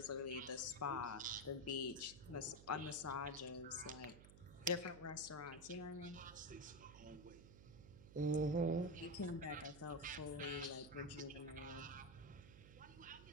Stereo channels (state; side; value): noise; right; hum, 16 dB below the sound